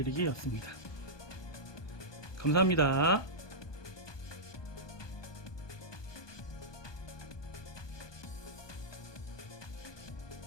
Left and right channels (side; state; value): right; late; 1.2 ms